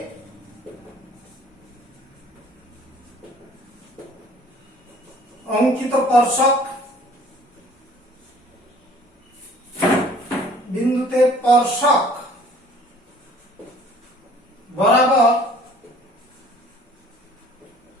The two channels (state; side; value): normal; both; correlation 0.53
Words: অঙ্কিত স্পর্শক বিন্দুতে স্পর্শক বরাবর